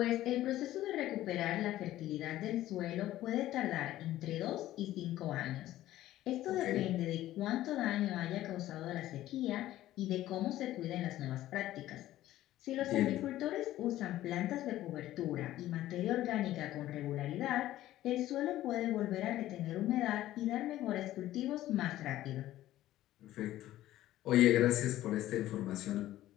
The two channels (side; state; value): right; quieter; 14.4 dB